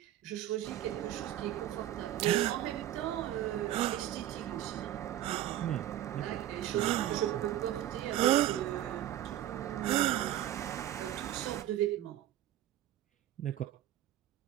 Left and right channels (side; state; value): left; quieter; 12.9 dB